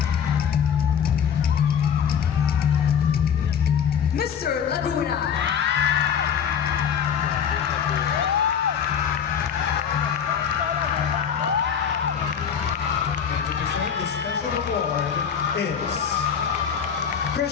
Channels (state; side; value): quieter; right; 7.8 dB